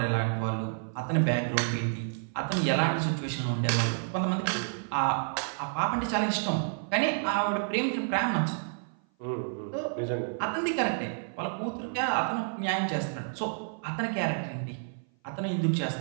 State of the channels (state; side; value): silent; left; 56 dB below the other